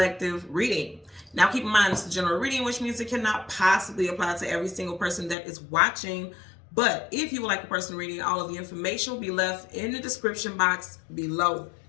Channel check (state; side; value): drops out; right; at 5.4 s